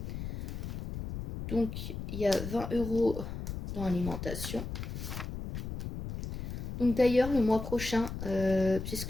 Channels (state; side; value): noise; left; rumble, 6 dB below the sound